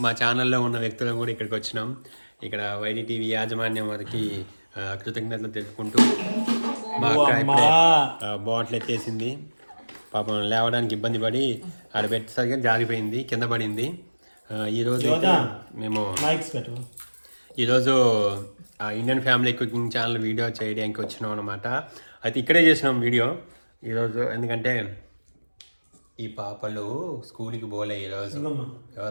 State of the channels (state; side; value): inverted; both; correlation -1.00